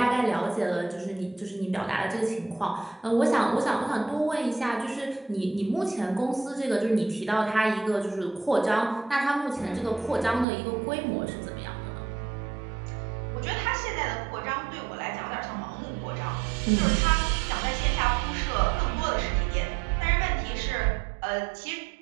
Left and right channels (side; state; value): left; drops out; at 10.5 s